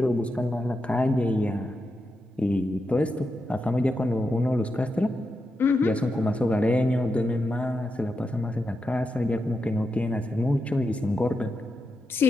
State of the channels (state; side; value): normal; both; correlation 0.87